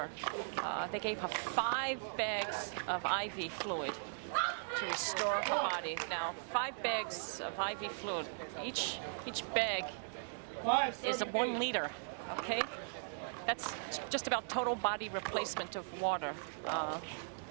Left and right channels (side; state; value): left; silent; digital silence